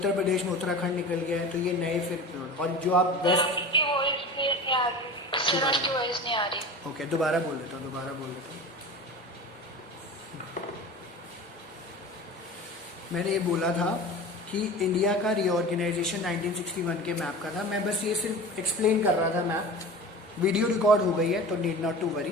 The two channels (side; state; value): both; normal; correlation 0.34